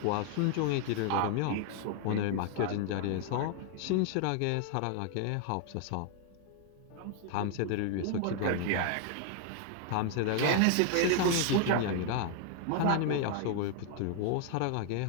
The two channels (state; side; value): different; both; correlation 0.00